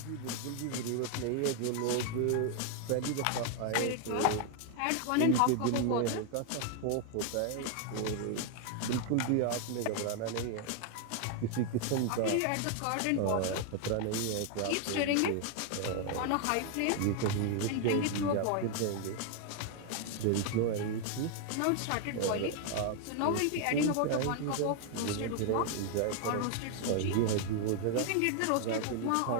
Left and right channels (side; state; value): both; different; correlation 0.00